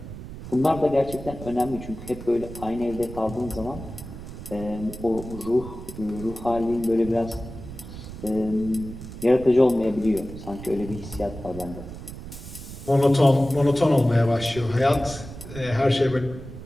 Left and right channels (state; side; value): noise; right; rumble, 12 dB below the sound